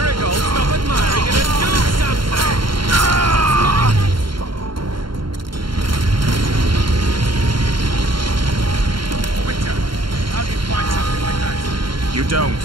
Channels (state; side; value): late; left; 0.73 ms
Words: stop admiring it and do something! Witcher, how do you fight something like that? You don't.